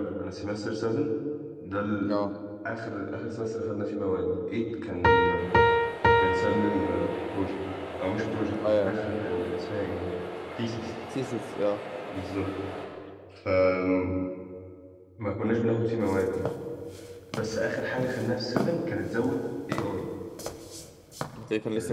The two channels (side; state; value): both; identical; correlation 1.00